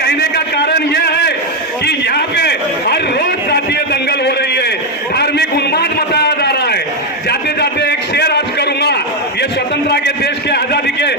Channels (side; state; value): both; normal; correlation 0.04